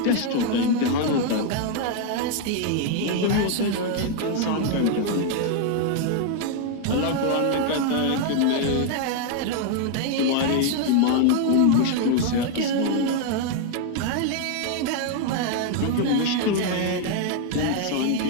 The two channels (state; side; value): different; both; correlation 0.00